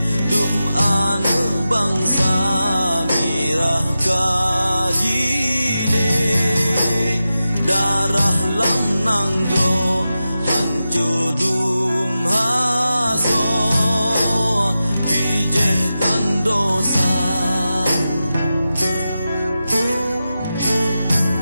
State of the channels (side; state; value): both; inverted; correlation -0.92